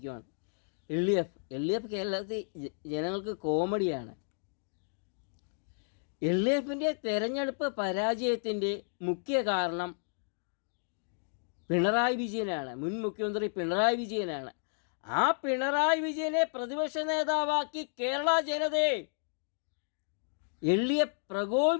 LDF കേരളത്തിൽ ജനങ്ങൾക്ക് കോമഡിയാണ്. LDFിൻ്റെ തെരഞ്ഞെടുപ്പ് പരാജയത്തിൻ്റെ മുഖ്യ കാരണം പിണറായി വിജയനാണ്. മുൻ മുഖ്യമന്ത്രി പിണറായി വിജയനാണ്. ആ പിണറായി വിജയനെ പ്രതിപക്ഷ നേതാവാക്കി കേരള ജനതയെ LDF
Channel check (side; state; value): right; silent; digital silence